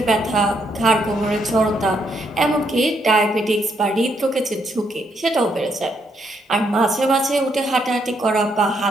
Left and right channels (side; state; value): both; normal; correlation 0.75